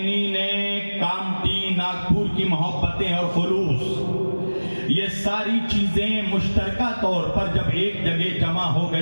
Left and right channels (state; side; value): inverted; both; correlation -1.00